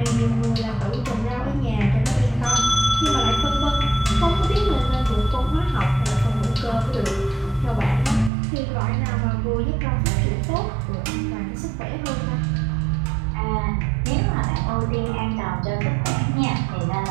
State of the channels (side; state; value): left; drops out; at 8.3 s